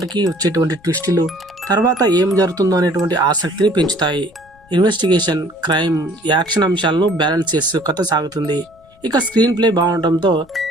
వచ్చేటువంటి ట్విస్టులు తర్వాత ఏం జరుగుతుందో అనేటువంటి ఆసక్తిని పెంచుతాయి. ఇన్వెస్టిగేషన్, క్రైమ్, యాక్షన్ అంశాలను బ్యాలెన్స్ చేస్తూ కథ సాగుతుంది. ఇక స్క్రీన్ ప్లే బాగుండటంతో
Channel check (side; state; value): left; noise; rumble, 29 dB below the sound